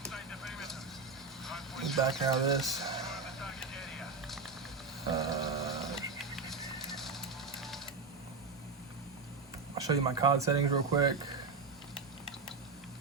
back out of this. I'll show you my COD settings real quick,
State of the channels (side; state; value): left; quieter; 4.4 dB